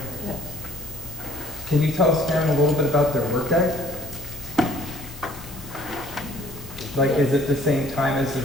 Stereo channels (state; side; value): noise; left; hiss, 23 dB below the sound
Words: Yes. Can you tell us, Karen, a little bit about their workday? Like, is it the same time as the